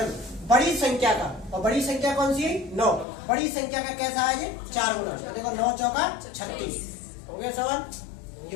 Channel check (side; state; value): right; drops out; at 3.1 s